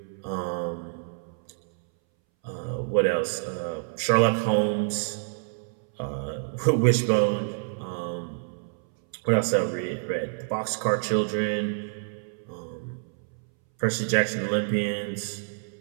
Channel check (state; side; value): silent; left; 60 dB below the other